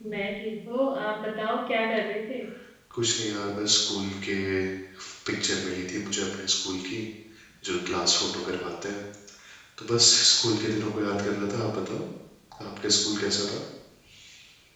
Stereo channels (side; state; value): both; identical; correlation 1.00